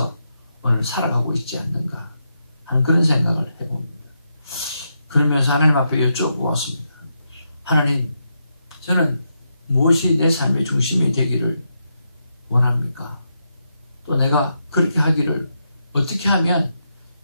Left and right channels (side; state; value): both; inverted; correlation -0.83